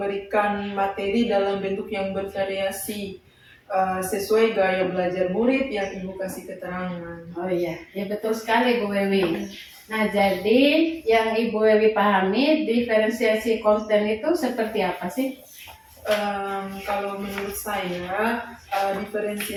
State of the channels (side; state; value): both; identical; correlation 1.00